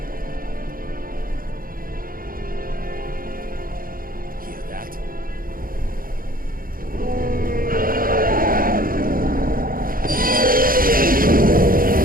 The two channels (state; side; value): late; left; 0.41 ms